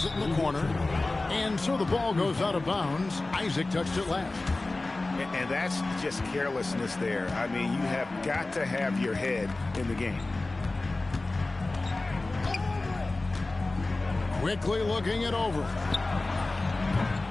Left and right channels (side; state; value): right; quieter; 3.1 dB